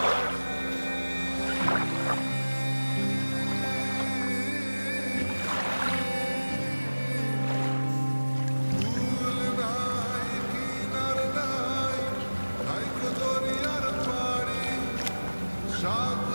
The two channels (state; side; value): inverted; both; correlation -1.00